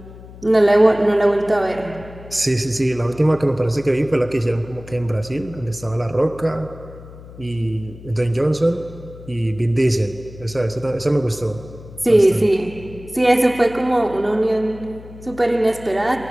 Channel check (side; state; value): left; noise; hum, 17 dB below the sound